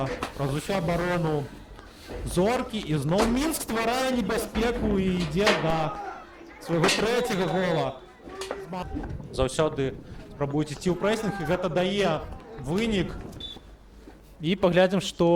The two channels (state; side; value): identical; both; correlation 1.00